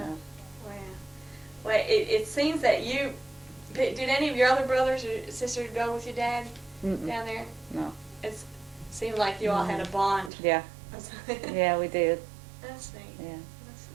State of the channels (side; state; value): left; drops out; at 10.3 s